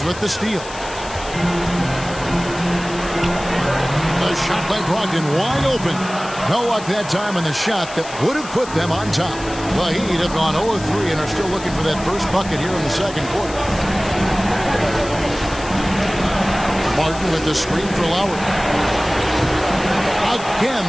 with the steal. The shot by Brogdon wide open. No luck that time on the shot that would have put them on top. The Heat have gone 0-3 and are still looking for that first bucket here in the second quarter. Martin with the screen for Lowry. Again,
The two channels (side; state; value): left; noise; hiss, 14 dB below the sound